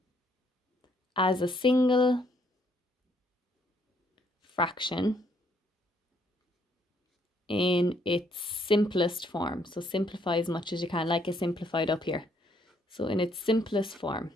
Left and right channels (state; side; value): normal; both; correlation 0.68